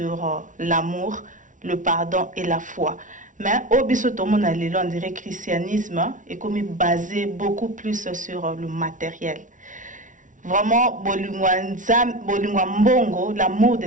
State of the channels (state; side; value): late; left; 0.37 ms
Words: l'amour, le pardon et la foi. Mais au bisotomo on dirait que le christianisme est comme basé beaucoup plus sur le matériel. Vraiment, bolingwa mbongo, l'amour de